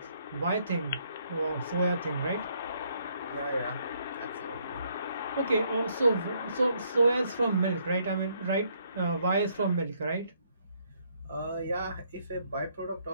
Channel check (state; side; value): inverted; both; correlation -0.70